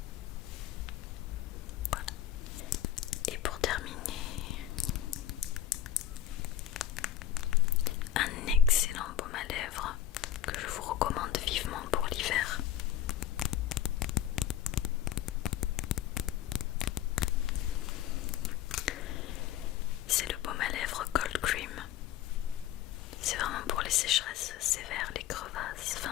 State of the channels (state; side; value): quieter; right; 11.4 dB